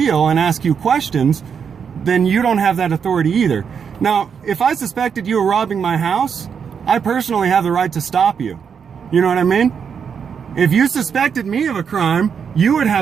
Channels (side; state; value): left; quieter; 6.9 dB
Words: and ask you questions, then you don't have that authority either. Now, if I suspected you were robbing my house, I personally have the right to stop you. You know what I mean? If you suspected me of a crime, you would